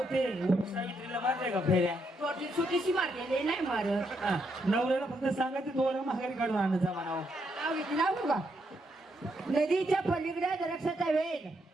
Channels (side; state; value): both; normal; correlation 0.78